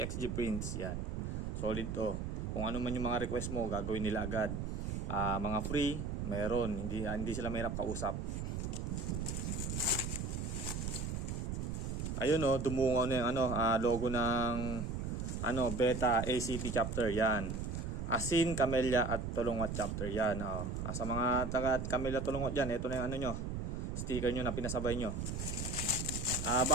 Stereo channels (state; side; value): noise; right; rumble, 3 dB below the sound